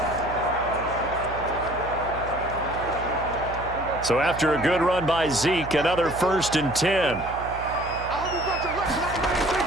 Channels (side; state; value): right; noise; hum, 11 dB below the sound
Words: So after a good run by Zeke, another 1st and 10.